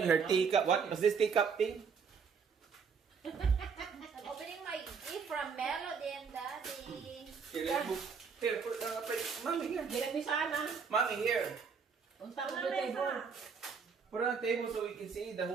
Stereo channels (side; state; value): left; quieter; 5.9 dB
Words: her teacup. What was this teacup thing? I'm opening my gift from Melody and Daddy. Here, put, mommy here. Bilang ni sana. Mommy here. Unta ko the table. Put it on the table so we can see the